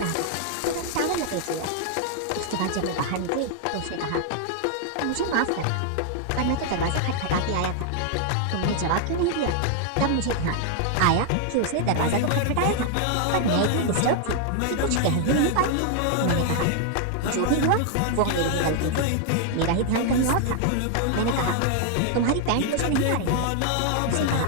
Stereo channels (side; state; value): both; different; correlation 0.00